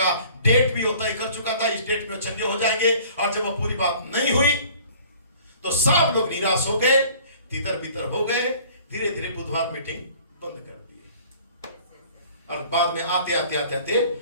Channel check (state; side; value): inverted; both; correlation -0.51